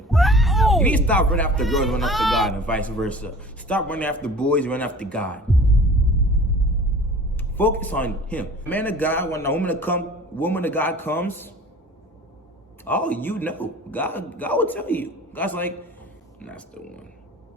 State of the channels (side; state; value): both; normal; correlation 0.43